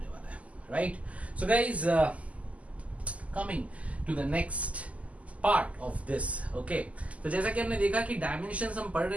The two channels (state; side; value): late; left; 0.069 ms